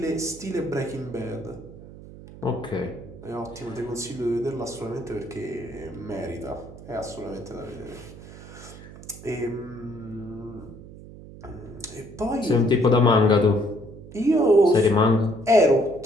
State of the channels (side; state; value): right; noise; hum, 16 dB below the sound